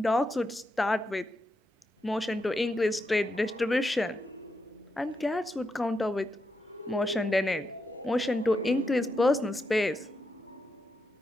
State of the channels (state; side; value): normal; both; correlation 0.84